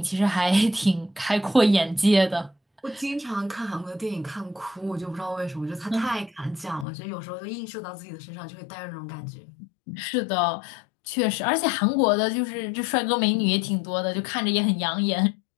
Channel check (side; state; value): right; drops out; at 6.9 s